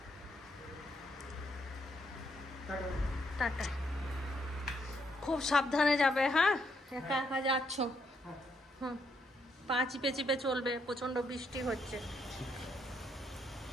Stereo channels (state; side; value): normal; both; correlation 0.75